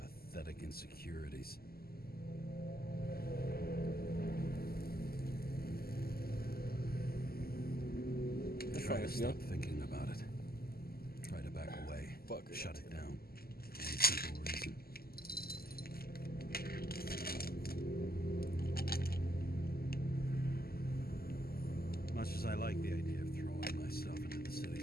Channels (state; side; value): late; right; 0.45 ms